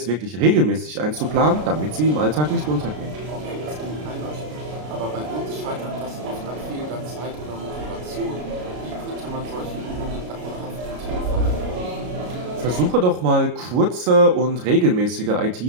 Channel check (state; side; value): late; left; 33 ms